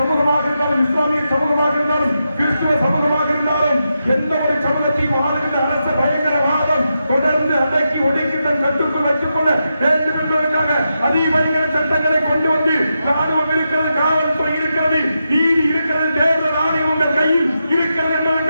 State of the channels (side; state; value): both; inverted; correlation -0.87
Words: இருந்தாலும், இஸ்லாமிய சமூகமாக இருந்தாலும், கிறிஸ்துவ சமூகமாக இருந்தாலும், எந்த ஒரு சமூகத்தையும் ஆளுகின்ற அரச பயங்கரவாதம் தொடர்ந்து அடக்கி ஒடுக்கி தன் கட்டுக்குள் வைத்துக் கொள்ள வேண்டும் என்பதற்காக அதிபயங்கர சட்டங்களை கொண்டு வந்து ராணுவம் இருக்கிறது, காவல்துறை இருக்கிறது, நீதி இருக்கிறது, தேர்தல் ஆணையம் உங்கள் கையில் இருக்கிறது